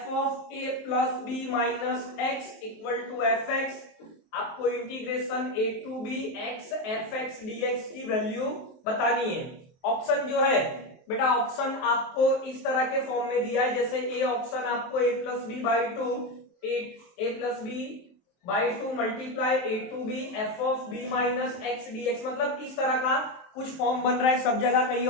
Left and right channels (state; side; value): late; right; 23 ms